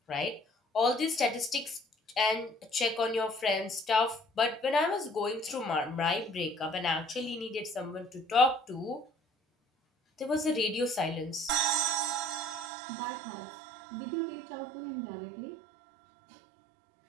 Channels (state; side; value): drops out; left; at 12.7 s